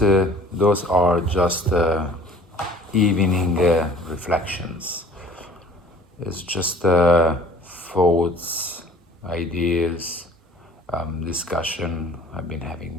those are just evening reflections. It's just thoughts, ideas, discussion I've been having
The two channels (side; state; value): both; normal; correlation 0.50